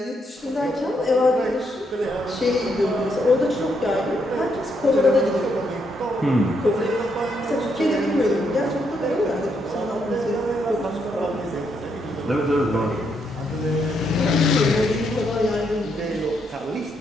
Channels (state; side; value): normal; both; correlation 0.77